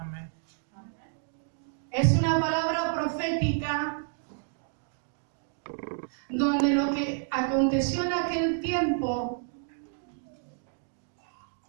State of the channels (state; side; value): silent; left; 58 dB below the other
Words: Es una palabra profética donde lo que aconteció en aquel tiempo